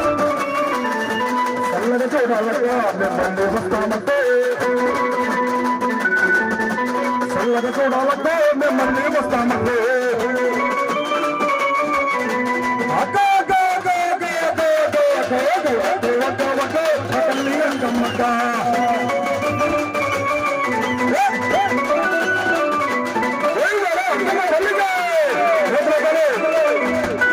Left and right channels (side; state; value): both; identical; correlation 1.00